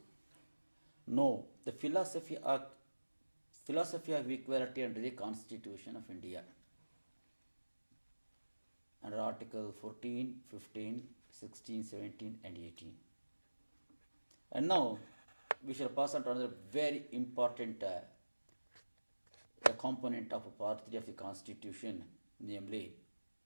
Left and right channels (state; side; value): inverted; both; correlation -1.00